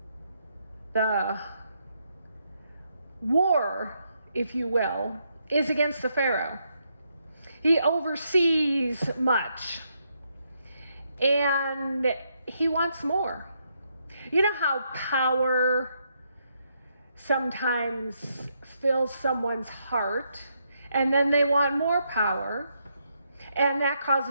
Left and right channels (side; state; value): both; inverted; correlation -0.78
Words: The war, if you will, is against the Pharaoh. He oversees much, and he wants more. You know how power sometimes fills someone's heart, and then they want more power, and that